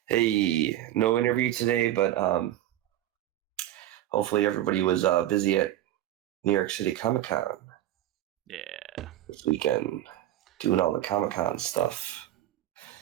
Hey, no interview today, but hopefully everybody was busy at New York City Comic-Con. Yeah. This weekend, doing all the Comic-Con stuff.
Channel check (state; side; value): quieter; left; 13.3 dB